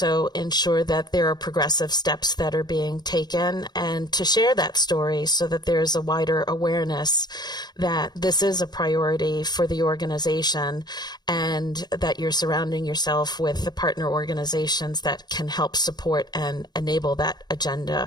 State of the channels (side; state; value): right; late; 0.20 ms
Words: ensure that there are progressive steps that are being taken, and to share that story so that there's a wider awareness that this is a priority for the organization and that you're surrounding yourself with the partner organizations that can help support and enable that agenda